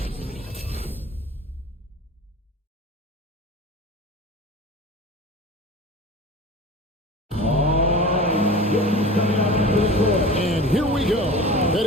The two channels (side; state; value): both; normal; correlation 0.35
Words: And here we go,